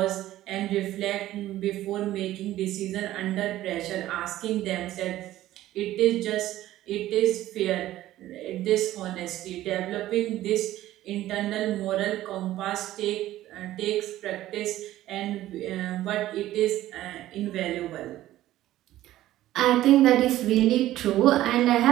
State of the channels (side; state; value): left; quieter; 14.5 dB